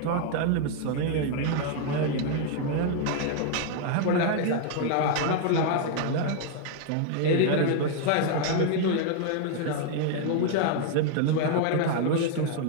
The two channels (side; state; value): both; different; correlation 0.00